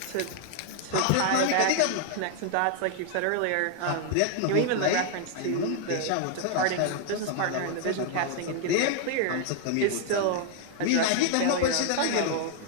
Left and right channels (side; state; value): both; different; correlation 0.00